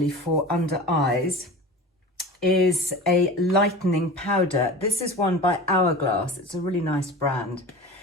for under eyes, is a lightening powder. This is one by Hourglass. It's a really nice brand,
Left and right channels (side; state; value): both; normal; correlation 0.34